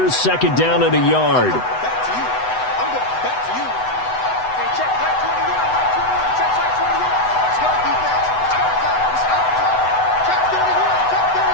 2nd down and a yard.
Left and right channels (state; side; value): late; right; 8.0 ms